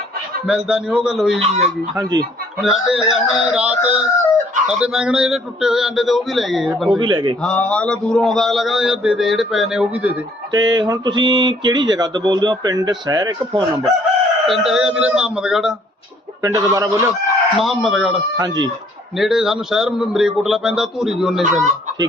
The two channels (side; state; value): both; normal; correlation 0.61